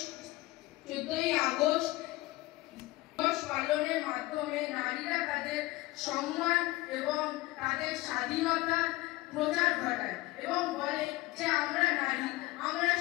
পালনের মাধ্যমে নারীরা তাদের সম্মান এবং তাদের স্বাধীনতার প্রচার ঘটায় এবং বলে যে আমরা নারী, আমরা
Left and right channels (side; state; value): right; quieter; 19.7 dB